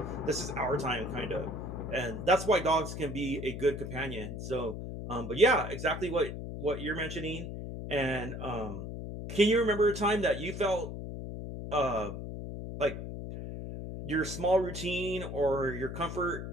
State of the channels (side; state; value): left; noise; hum, 7 dB below the sound